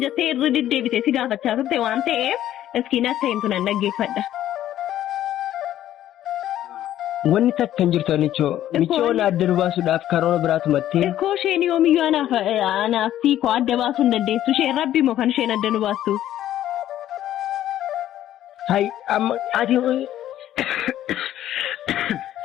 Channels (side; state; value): right; quieter; 12.4 dB